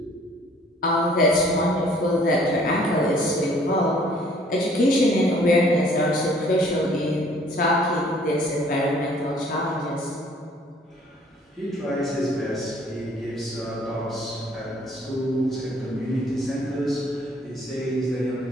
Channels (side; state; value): both; normal; correlation 0.58